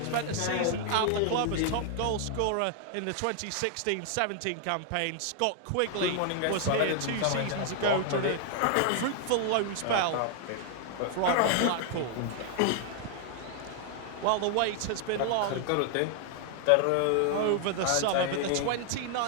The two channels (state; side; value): different; both; correlation 0.00